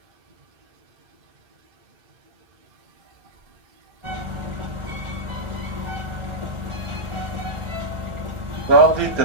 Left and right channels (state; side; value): late; left; 1.4 ms